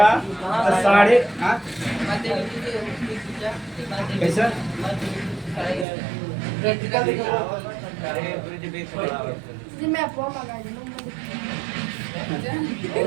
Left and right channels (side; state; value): left; drops out; at 5.9 s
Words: तो साढ़े कैसा जी मैं आपको मंगा